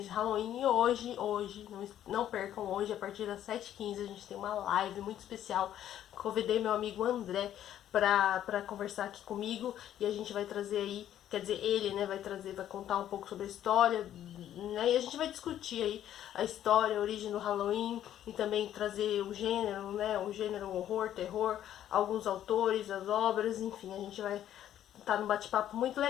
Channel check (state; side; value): quieter; right; 11.3 dB